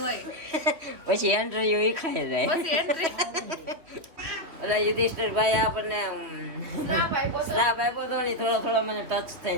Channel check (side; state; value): left; late; 2.8 ms